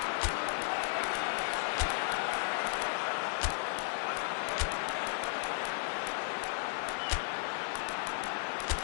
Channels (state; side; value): silent; right; digital silence